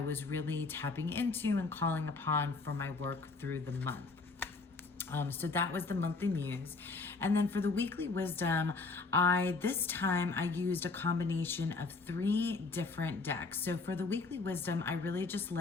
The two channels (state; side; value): quieter; right; 4.0 dB